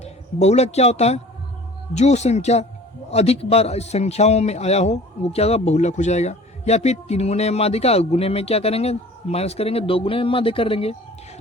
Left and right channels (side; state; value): both; normal; correlation 0.45